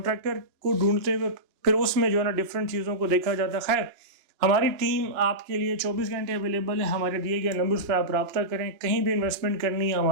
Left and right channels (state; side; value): late; left; 2.9 ms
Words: کو ڈھونڈتے ہوئے پھر اس میں جو ہے نا ڈفرینٹ چیزوں کو دیکھا جاتا ہے. خیر, ہماری ٹیم آپ کے لیے 24 گھنٹے اویلیبل ہے. ہمارے دیے گئے نمبرز پہ آپ رابطہ کریں. کہیں بھی انویسٹمنٹ کرنی ہے